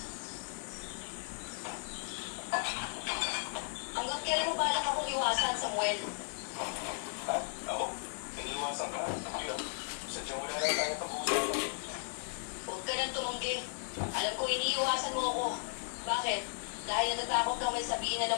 Hanggang kailan mo balak akong iwasan, Samuel? Ha? Ako? Iniiwasan ka? Hindi ah. Sadyang wala lang tayo pag-uusapan. Huwag ka nang tumanggi. Alam ko iniiwasan mo ako. Bakit? Dahil natatakot kang may sabihin na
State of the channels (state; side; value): silent; right; digital silence